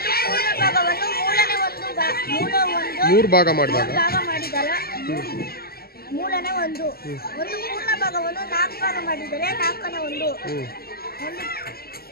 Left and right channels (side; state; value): right; late; 0.45 ms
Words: ಪೂರ್ಣ ಭಾಗವನ್ನು ಮೂರನೇ ಮೂರು ಭಾಗ ಮಾಡಿದಾಗ ಮಾಡಿದರೆ ಮೂರನೇ ಒಂದು. ಒಂದು ಪೂರ್ಣ ಭಾಗವನ್ನು 4 ಭಾಗ ಮಾಡಿದರೆ ನಾಲ್ಕನೇ ಒಂದು. ಒಂದು